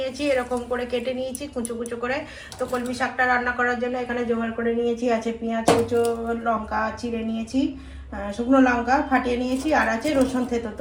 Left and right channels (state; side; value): identical; both; correlation 1.00